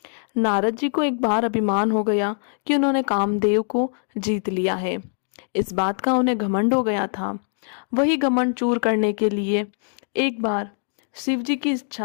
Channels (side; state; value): right; silent; digital silence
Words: नारद जी को एक बार अभिमान हो गया कि उन्होंने कामदेव को जीत लिया है। इस बात का उन्हें घमंड हो गया था। वही घमंड चूर करने के लिए एक बार शिव जी की